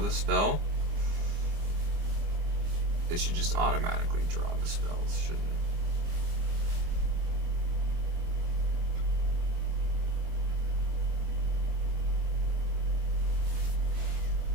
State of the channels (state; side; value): late; left; 25 ms